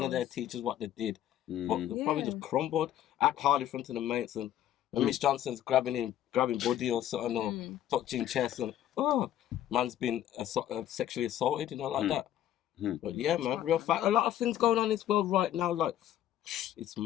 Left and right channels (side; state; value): right; quieter; 11.8 dB